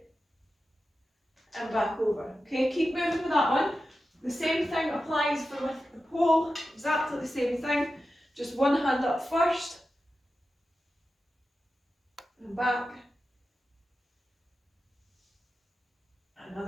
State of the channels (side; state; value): both; normal; correlation 0.92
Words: and back over. Okay, keep moving with that one. The same thing applies for with the pole, exactly the same thing. Just one hand up first and back.